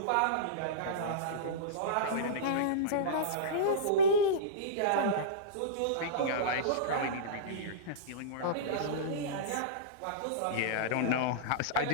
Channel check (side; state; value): both; different; correlation -0.04